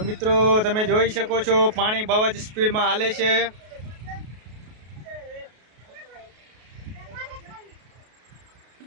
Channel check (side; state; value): left; late; 33 ms